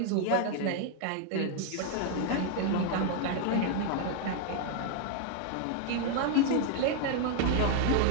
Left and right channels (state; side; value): different; both; correlation 0.00